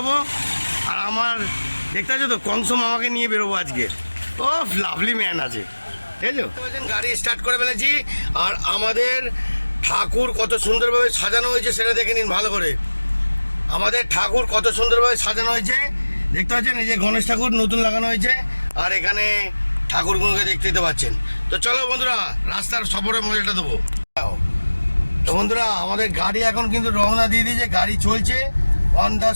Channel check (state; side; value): inverted; both; correlation -1.00